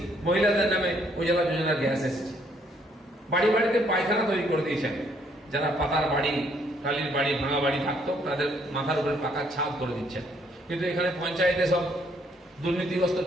মহিলাদের নামে উজালা যোজনার গ্যাস এসেছে। বাড়ি বাড়িতে পায়খানা তৈরি করে দিয়েছেন, যারা পাতার বাড়ি, টালির বাড়ি, ভাঙা বাড়ি থাকতো তাদের মাথার উপরে পাকার ছাদ করে দিচ্ছেন। কিন্তু এখানে পঞ্চায়েতে সব দুর্নীতিগ্রস্ত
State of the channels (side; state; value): both; normal; correlation 0.67